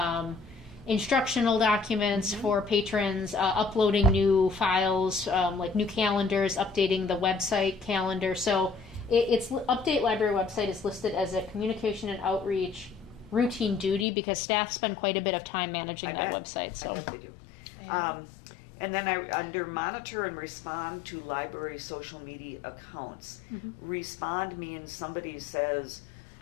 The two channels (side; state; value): right; drops out; at 14.1 s